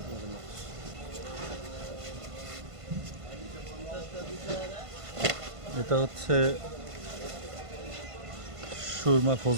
আপনার জন্য। এটা হচ্ছে সুরমা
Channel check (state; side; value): late; left; 1.5 ms